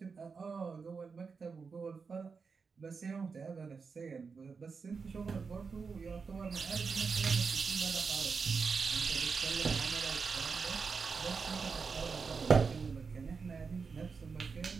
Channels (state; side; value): quieter; left; 5.2 dB